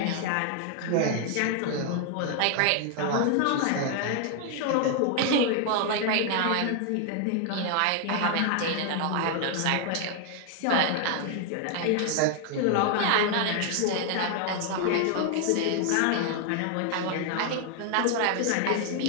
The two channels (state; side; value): different; both; correlation 0.00